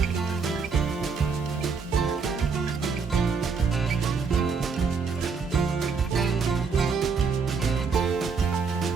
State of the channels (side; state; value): left; quieter; 5.3 dB